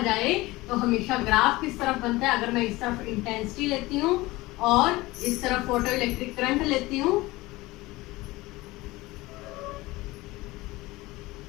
जाए तो हमेशा ग्राफ किस तरफ बनता है? अगर मैं इस तरफ इंटेंसिटी लेती हूँ और इस तरफ फोटो इलेक्ट्रिक करंट लेती हूँ,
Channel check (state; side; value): quieter; right; 20.2 dB